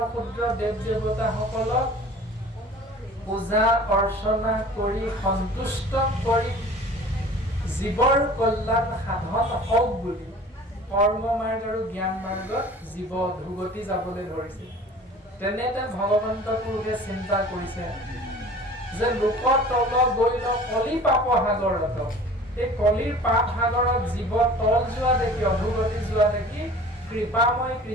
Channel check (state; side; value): normal; both; correlation 0.44